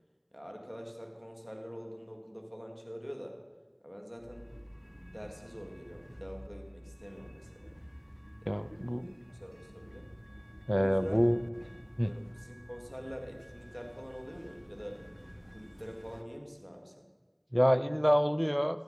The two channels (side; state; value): both; identical; correlation 1.00